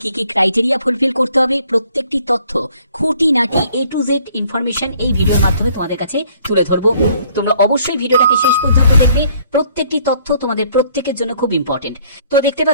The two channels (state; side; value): inverted; both; correlation -0.61